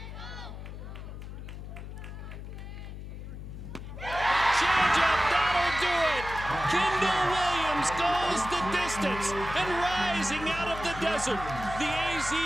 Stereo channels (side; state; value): left; noise; hum, 10 dB below the sound